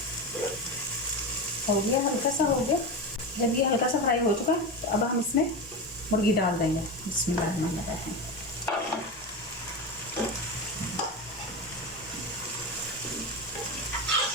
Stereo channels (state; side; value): normal; both; correlation 0.20